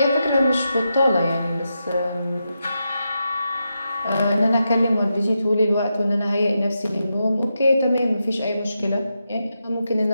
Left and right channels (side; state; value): both; inverted; correlation -0.86